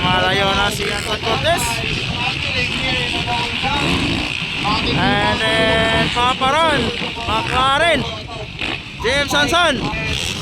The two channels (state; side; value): identical; both; correlation 1.00